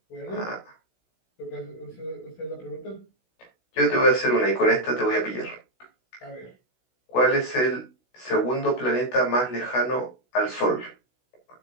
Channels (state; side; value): late; right; 16 ms